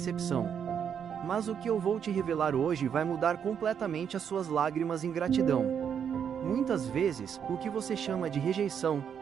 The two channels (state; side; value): quieter; left; 7.9 dB